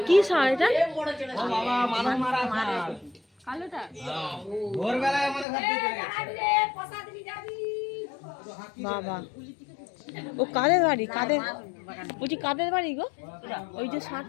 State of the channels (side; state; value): right; drops out; at 5.5 s